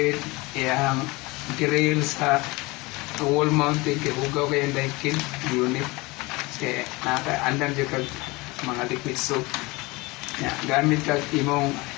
yung grill sa wall mounted kay ugaw kay ang daikin unit. Kasi nakaandam dyan kag mga liquid soap. Yeah, gamit kag imong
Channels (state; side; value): quieter; right; 23.4 dB